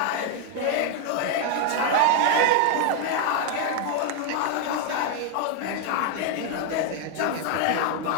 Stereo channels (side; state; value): both; different; correlation 0.01